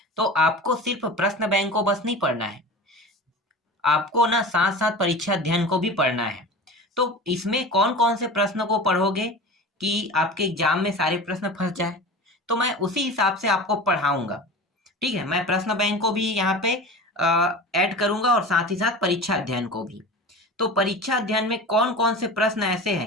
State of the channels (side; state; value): both; normal; correlation 0.33